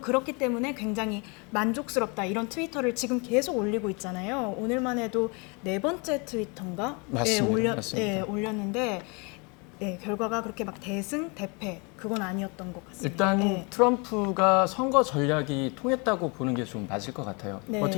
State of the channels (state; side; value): quieter; right; 31.3 dB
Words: 때문에 굉장히 만족스럽다 이런 트위터를 지금 계속 올리고 있잖아요. 오늘만 해도 4번째 트위터인가? 맞습니다. 맞습니다. 올렸는데. 네, 결과가 그렇게 막 대승, 대패 그건 아니었던 것 같습니다. 일단 네. 트럼프가 선거 전략이 통했다고 보는 게 좀 맞을 것 같아요. 네.